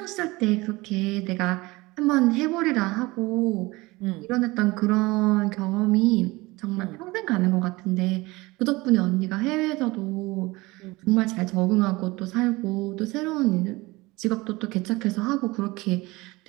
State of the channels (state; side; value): quieter; left; 21.8 dB